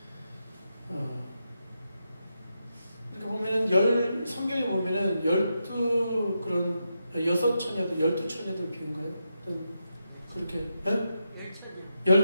이렇게 보면은 성경에 보면은 12처녀들 비유인가요? 그렇게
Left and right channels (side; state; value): both; inverted; correlation -0.85